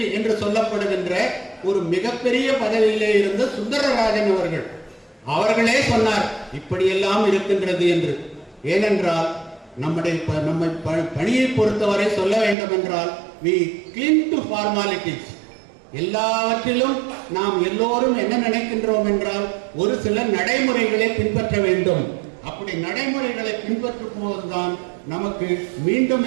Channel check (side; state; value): left; drops out; at 12.6 s